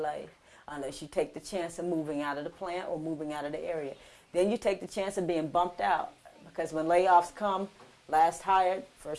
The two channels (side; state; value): both; identical; correlation 1.00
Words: unless you take the chance of moving out of the plant or moving out of the area. Then you take the chance of being bumped out, because when layoffs come, last hired,